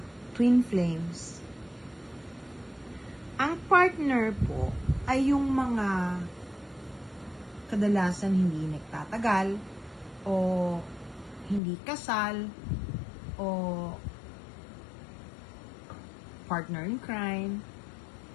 twin flames. Ang partner po ay yung mga kadalasan hindi nagtatagal o hindi kasal o partner in crime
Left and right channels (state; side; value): drops out; right; at 11.6 s